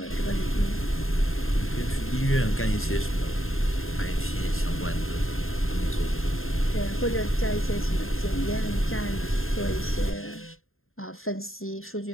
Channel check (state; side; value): late; right; 0.61 ms